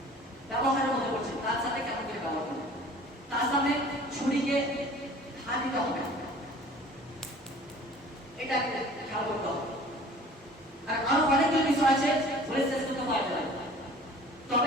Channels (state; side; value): normal; both; correlation 0.47